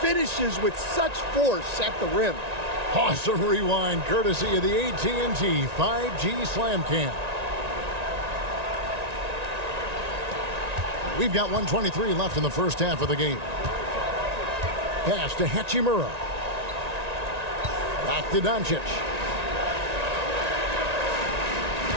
with such force at the rim. Awesome rewind courtesy of the AT&T 5G Slam Cam. We've got 1:23 left in the first half of the game. Pass to Hachimura. Back to Doncic.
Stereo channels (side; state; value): left; late; 1.9 ms